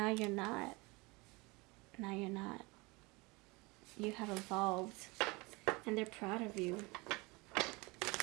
you're not. Now you're not. You have evolved, and they're proud of you.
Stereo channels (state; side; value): quieter; left; 25.3 dB